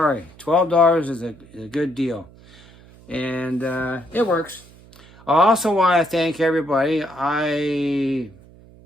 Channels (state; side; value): noise; right; hum, 24 dB below the sound